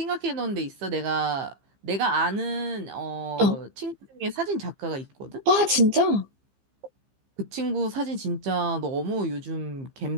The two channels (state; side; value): late; left; 15 ms